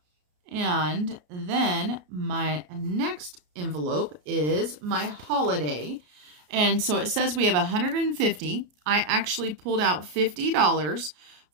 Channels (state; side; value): late; left; 33 ms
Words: And then my next envelope is my holiday. And so it says we have 150. I actually pulled out $50